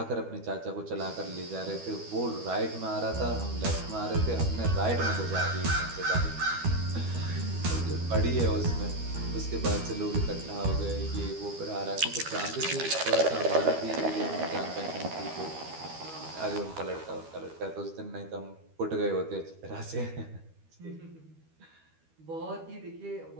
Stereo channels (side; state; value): left; late; 12 ms